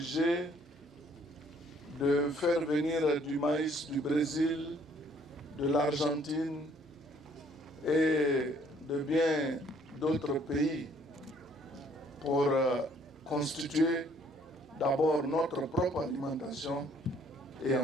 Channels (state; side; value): normal; both; correlation 0.62